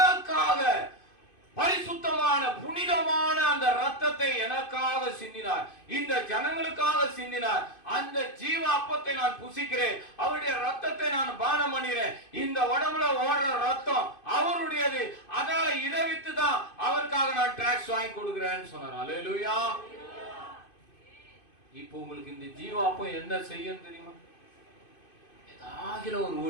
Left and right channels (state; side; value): late; right; 2.5 ms